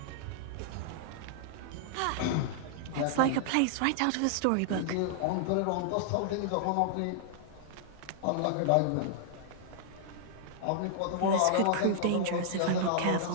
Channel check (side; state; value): both; different; correlation -0.01